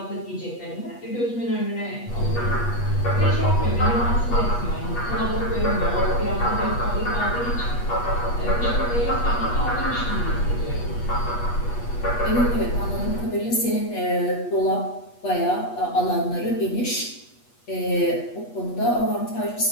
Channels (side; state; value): right; late; 8.3 ms